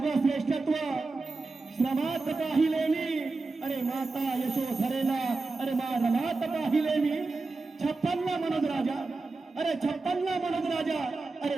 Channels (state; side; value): quieter; left; 3.6 dB